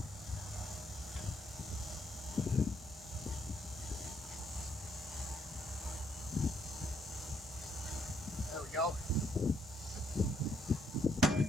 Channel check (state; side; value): normal; both; correlation 0.71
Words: There we go.